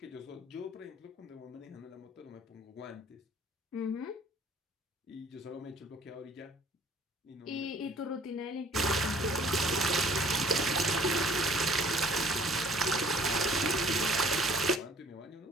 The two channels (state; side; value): normal; both; correlation 0.56